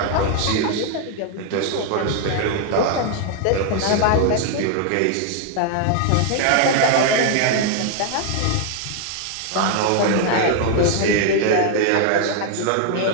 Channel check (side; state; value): both; different; correlation 0.00